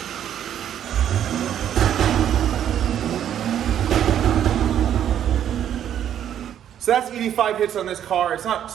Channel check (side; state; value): left; quieter; 10.1 dB